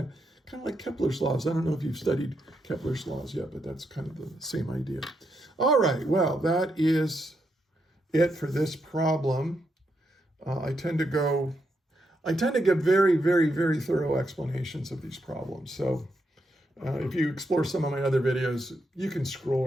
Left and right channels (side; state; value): both; normal; correlation 0.81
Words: of like Kepler's laws. I don't know if you've studied Kepler's laws yet, but that's kind of the same idea. All right, well, that is it for this problem. I tend to give very, very, very thorough explanations of these problems. So if you explore some of my other videos, you can scroll